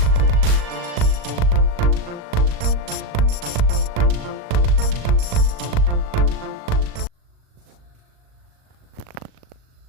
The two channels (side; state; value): left; late; 39 ms